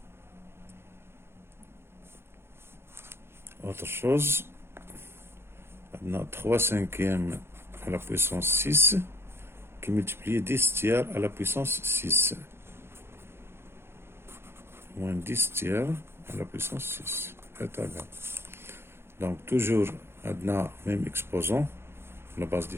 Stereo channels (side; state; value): left; late; 0.12 ms